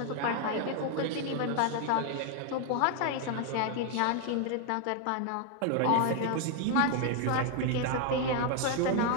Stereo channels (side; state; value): both; different; correlation 0.00